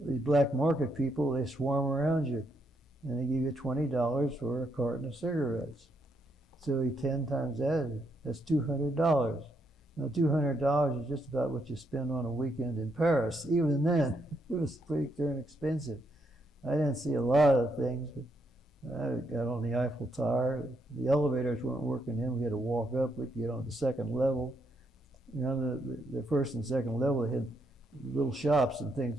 black market people, they swarm around you. And they give you $20 for a carton of cigarettes. So 10 times that, that's $200. Now $200 is just about what you spend on a weekend in Paris. Even then, it was pretty darn expensive. I didn't see a lot of things, but I got on the Eiffel Tower. The elevators weren't working then. We had to walk up. We could get on the second level. The first and second level, they had little shops and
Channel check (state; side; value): normal; both; correlation 0.77